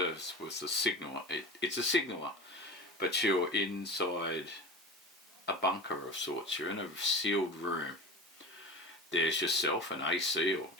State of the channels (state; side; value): normal; both; correlation 0.32